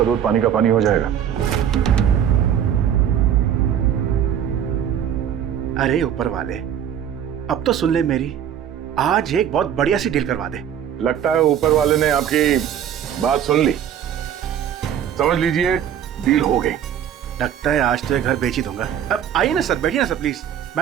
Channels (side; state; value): left; quieter; 9.4 dB